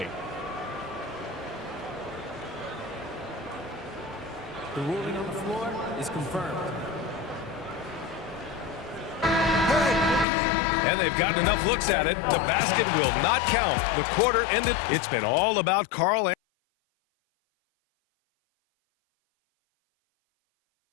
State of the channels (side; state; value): right; drops out; at 10.2 s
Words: The ruling on the floor is confirmed. And they've gotten enough looks at it. The basket will not count. The quarter ended. It's been all about Karl